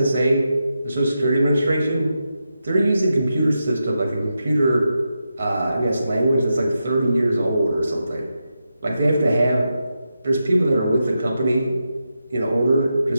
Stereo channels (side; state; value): both; inverted; correlation -0.87